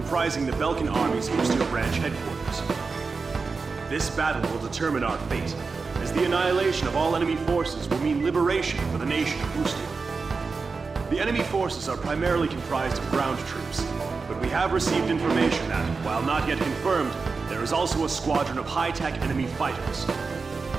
the Belkan Army's Ustio branch headquarters. This battle will determine our fate, as the annihilation of all enemy forces will mean liberation for the nation of Ustio. The enemy forces are primarily comprised of ground troops, but we have received information that, while not yet confirmed, there is also a squadron of high-tech enemy fighters.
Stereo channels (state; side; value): quieter; left; 4.5 dB